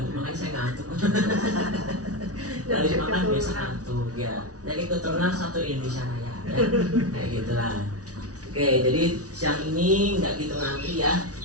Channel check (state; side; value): late; left; 0.67 ms